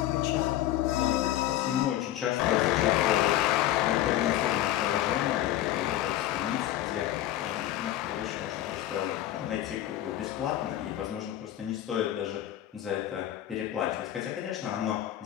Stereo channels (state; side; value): quieter; right; 13.3 dB